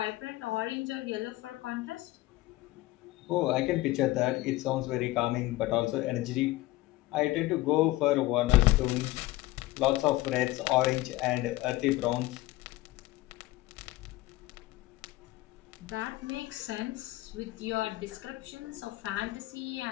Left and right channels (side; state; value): right; quieter; 18.0 dB